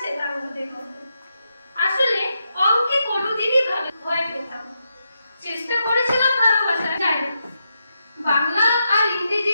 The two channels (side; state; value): both; inverted; correlation -0.84